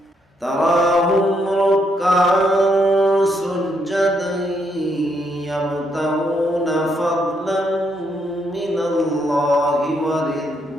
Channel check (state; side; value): normal; both; correlation 0.75